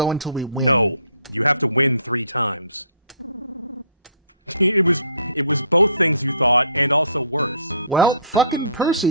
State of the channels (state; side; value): inverted; both; correlation -0.56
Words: until we win? No, you have to win 3 times. It was both things you thought, and also worse. Well, fucking Percy,